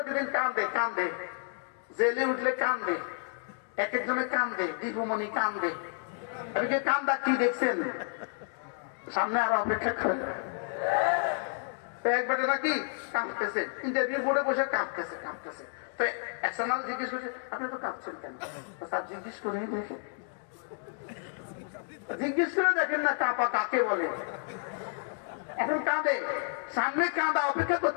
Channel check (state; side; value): silent; right; 57 dB below the other